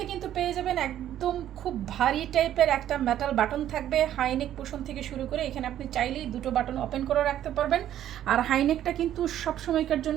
কিন্তু পেয়ে যাবেন একদম খুব ভারী টাইপের একটা মেটাল বাটন থাকবে, হাইনেক পোষণ থেকে শুরু করে এখানে আপনি চাইলেই দুটো বাটন ওপেন করে রাখতে পারবেন। আর হাইনেকটা কিন্তু সব সময়কার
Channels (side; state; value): left; quieter; 11.6 dB